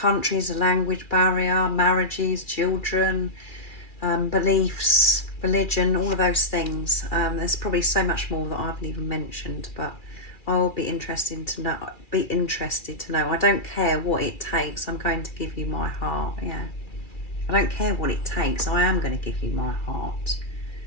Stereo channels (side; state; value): right; late; 2.4 ms